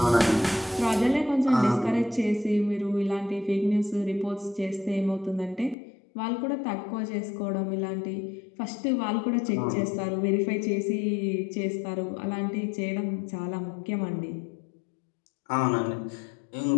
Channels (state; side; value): drops out; right; at 5.8 s